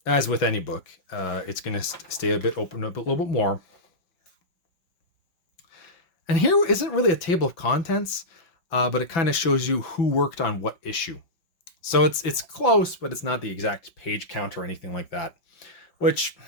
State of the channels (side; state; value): right; late; 6.0 ms